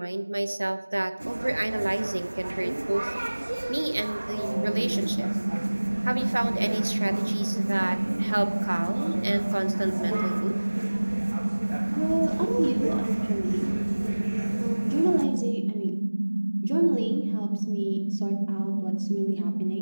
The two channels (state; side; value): inverted; both; correlation -1.00